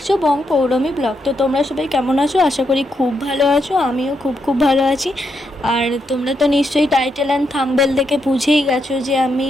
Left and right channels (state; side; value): normal; both; correlation 0.80